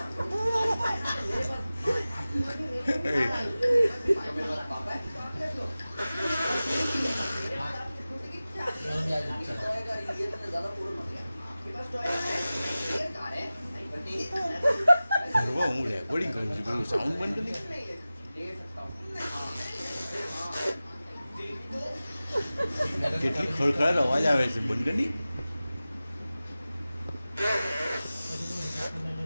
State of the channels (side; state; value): both; inverted; correlation -0.96